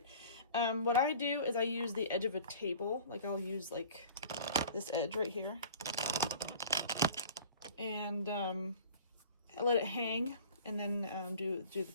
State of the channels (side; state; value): both; inverted; correlation -0.44